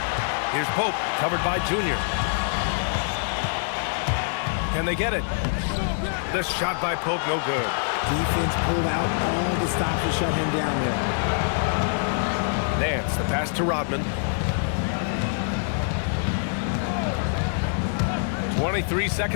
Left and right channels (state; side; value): silent; right; digital silence